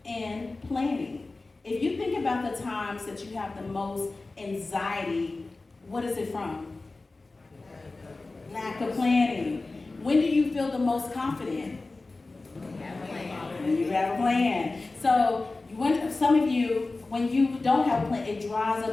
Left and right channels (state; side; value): quieter; right; 3.4 dB